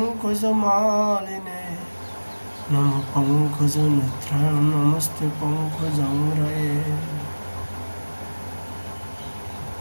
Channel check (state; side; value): inverted; both; correlation -1.00